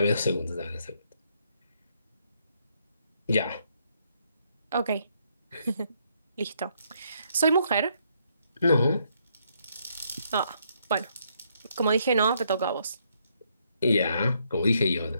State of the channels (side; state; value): both; inverted; correlation -0.72